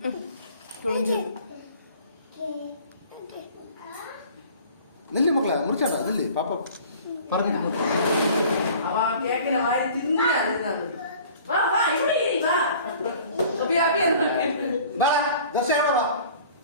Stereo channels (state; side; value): inverted; both; correlation -0.48